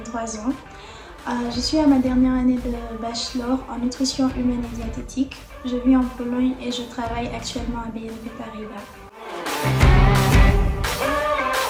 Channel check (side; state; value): both; identical; correlation 1.00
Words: ans. Je suis à ma dernière année de bachelor en nutrition humaine et diététique. Je vis en Pologne et je travaille actuellement à BNP Paribas.